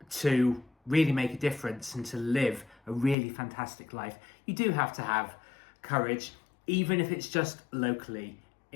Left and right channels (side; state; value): right; drops out; at 3.2 s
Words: to really make a difference and to live a really fantastic life, you do have to have courage, even if it's just locally.